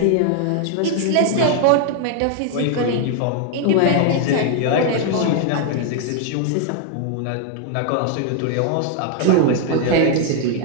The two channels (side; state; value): both; different; correlation 0.00